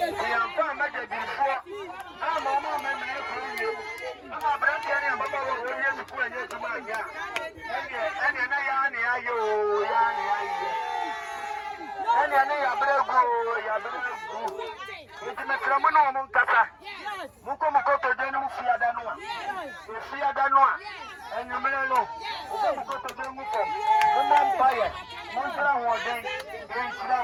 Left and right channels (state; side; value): identical; both; correlation 1.00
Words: am fine, my dear. I'm a mama, I'm a brand new Baba Williams to put in to my yard. And it's a phenomenal Munkasa. Mukomoto Denu Fiadanoa. Fiadanoa. And you may know. Mukomoto Denu Empire. Montana was then